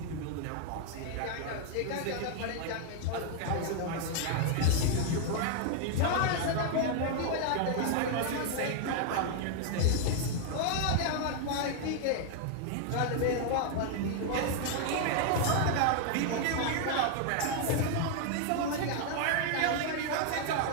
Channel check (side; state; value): both; different; correlation 0.00